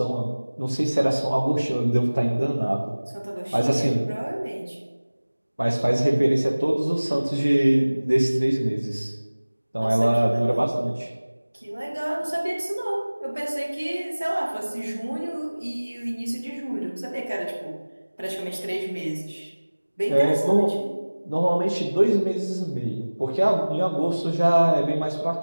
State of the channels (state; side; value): inverted; both; correlation -1.00